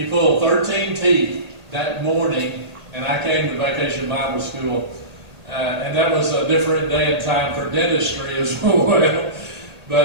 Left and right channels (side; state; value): left; late; 1.8 ms